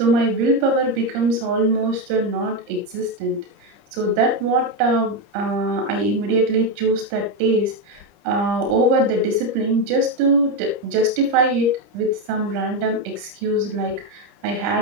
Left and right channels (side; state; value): left; late; 30 ms